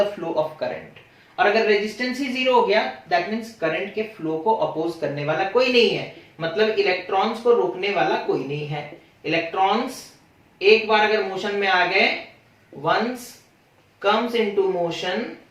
flow of current, और अगर रेजिस्टेंस ही 0 हो गया, दैट मींस करंट के फ्लो को अपोज करने वाला कोई नहीं है, मतलब इलेक्ट्रॉन्स को रोकने वाला कोई नहीं है। इलेक्ट्रॉन्स एक बार अगर मोशन में आ गए, once comes into motion,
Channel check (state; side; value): identical; both; correlation 1.00